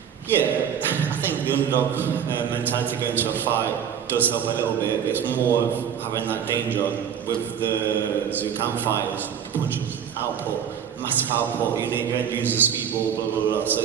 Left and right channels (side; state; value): left; quieter; 8.4 dB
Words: Yeah, I think the underdog mentality going to a fight does help a little bit. It's more of having that danger with the Zucam fighters, the punches, output, massive output, you don't use the speedball, blah, blah, blah. So